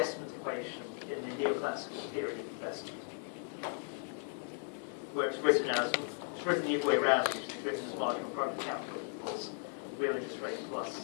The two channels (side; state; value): right; silent; 53 dB below the other